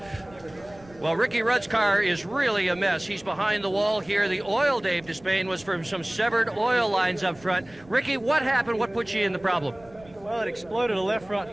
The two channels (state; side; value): noise; right; rumble, 24 dB below the sound